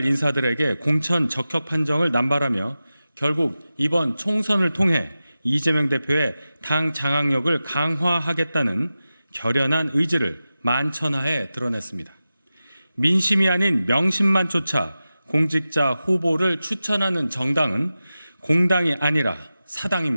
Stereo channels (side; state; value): both; inverted; correlation -0.94